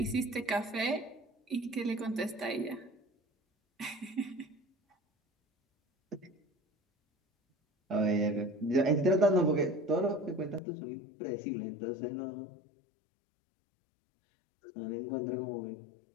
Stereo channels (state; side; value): drops out; right; at 10.6 s